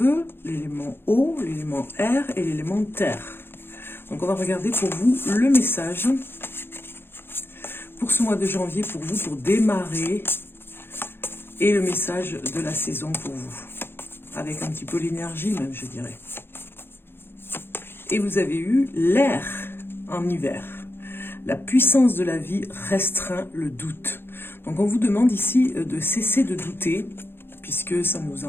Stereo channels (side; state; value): right; late; 0.11 ms